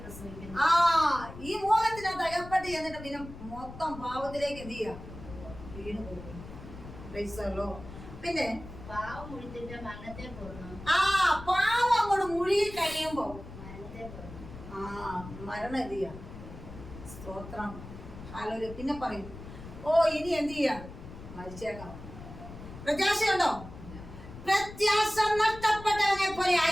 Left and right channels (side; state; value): left; noise; rumble, 14 dB below the sound